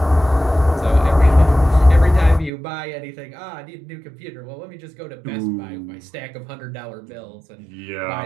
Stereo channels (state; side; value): drops out; left; at 2.5 s